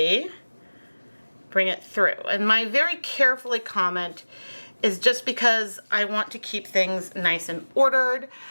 bring it through. And my very carefully comment is just because I want to keep things nice and ordered.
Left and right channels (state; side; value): inverted; both; correlation -1.00